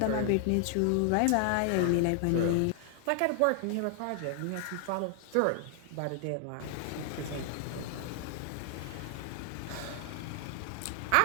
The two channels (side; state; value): both; different; correlation 0.00